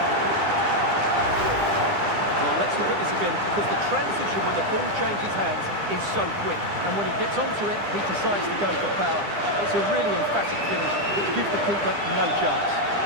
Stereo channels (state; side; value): late; left; 9.9 ms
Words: Well, let's look at this again, because the transition when the ball changes hands is so quick. And when he gets onto it, he decides to go for power. It's a really emphatic finish that gives the keeper no chance.